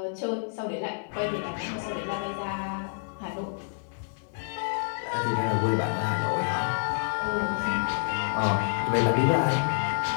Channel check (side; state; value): right; silent; digital silence